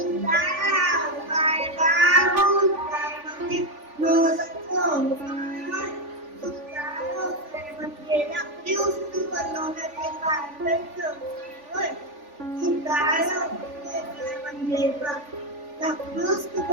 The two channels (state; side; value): late; left; 3.4 ms